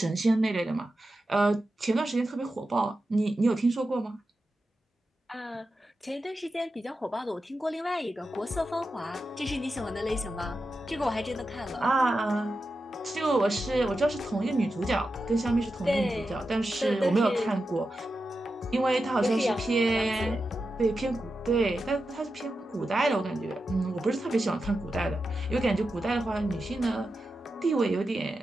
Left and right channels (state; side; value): normal; both; correlation 0.90